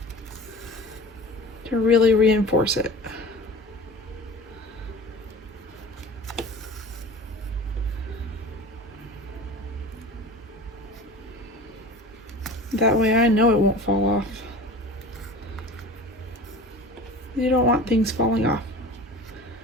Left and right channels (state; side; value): normal; both; correlation 0.38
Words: to really reinforce it. That way I know it won't fall off. You don't want things falling off.